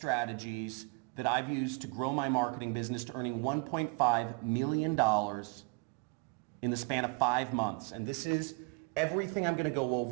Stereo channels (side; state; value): left; quieter; 31.0 dB